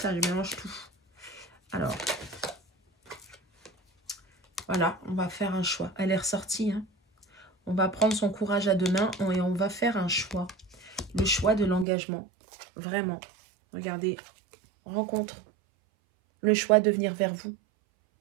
je mélange tout. Alors. Voilà, on va faire un choix. Elle est ressortie. Hein. On va prendre son courage à 2 mains et on va faire un choix. Le choix de l'engagement. Vraiment. Regardez. Rencontre. Le choix de venir vers vous.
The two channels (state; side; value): drops out; left; at 11.9 s